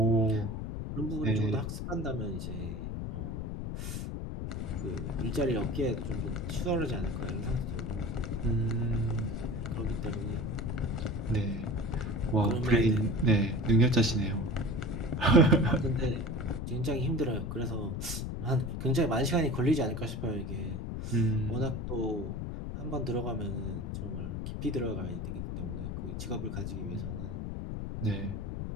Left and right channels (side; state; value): left; noise; rumble, 4 dB below the sound